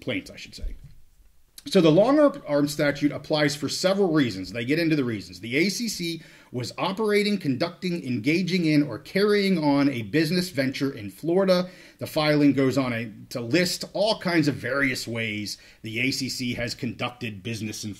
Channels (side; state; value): both; identical; correlation 1.00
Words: I should say. So the long-arm statute applies for several reasons. They get into the reasons. The ACC was operating, conducting, engaging in, or carrying on a business venture in Florida. The filing goes on to list all kinds of various ways the ACC has conducted business in